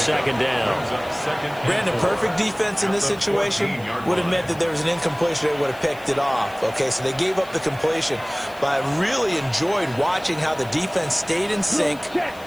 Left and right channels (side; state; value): left; noise; hiss, 23 dB below the sound